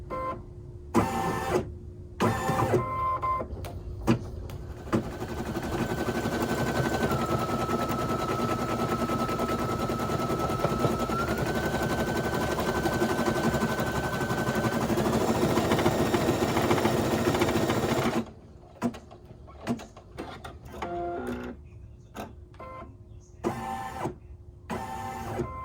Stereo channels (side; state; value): both; identical; correlation 1.00